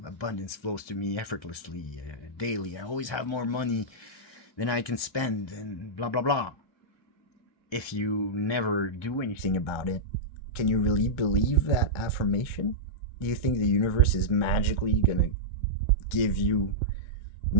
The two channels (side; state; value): right; late; 1.2 ms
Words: abundance flows to me effortlessly, daily, I always have more money than I can spend, and blah blah blah. If you never do anything about it, can you really believe that affirmation? Do you think the universe is magically gonna give you